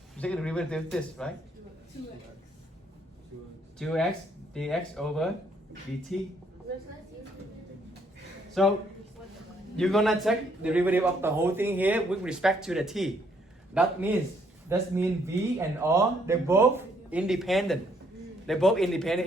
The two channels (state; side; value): normal; both; correlation 0.69